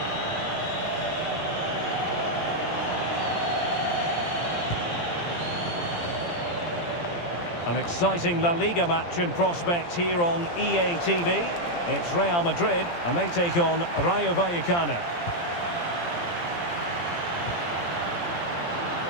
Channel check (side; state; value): right; late; 17 ms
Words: An exciting La Liga match in prospect here on EA TV. It's Real Madrid, and they take on Rayo Vallecano.